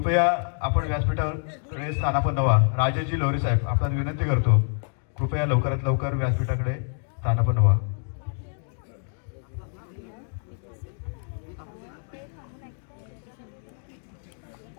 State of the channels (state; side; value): silent; right; 60 dB below the other